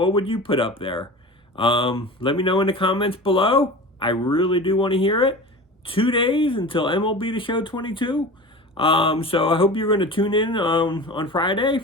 would you put up there? Let me know in the comments below. I really do want to hear it. 2 days until MLB The Show 22. So I hope you're going to tune in on Friday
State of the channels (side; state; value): both; normal; correlation 0.34